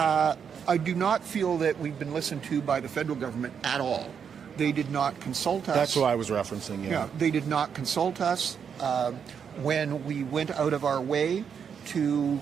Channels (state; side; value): quieter; left; 7.2 dB